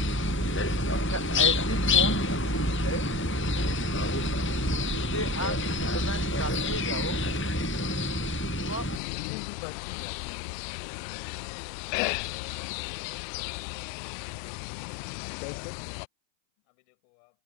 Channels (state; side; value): drops out; right; at 9.0 s